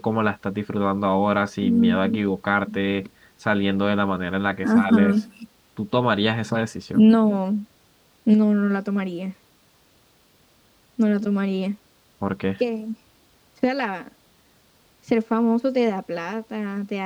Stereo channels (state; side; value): identical; both; correlation 1.00